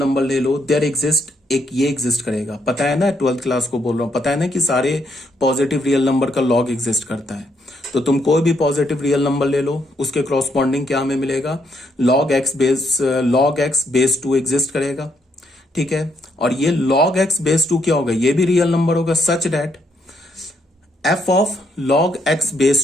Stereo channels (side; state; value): both; normal; correlation 0.75